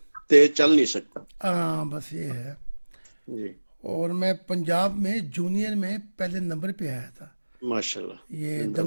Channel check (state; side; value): inverted; both; correlation -1.00